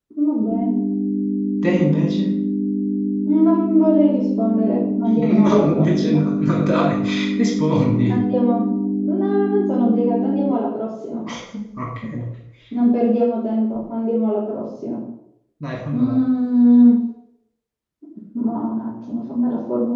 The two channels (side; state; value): both; identical; correlation 1.00